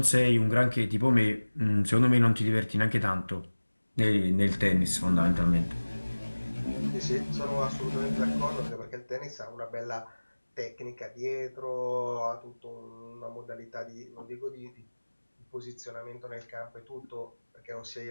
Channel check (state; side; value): inverted; both; correlation -1.00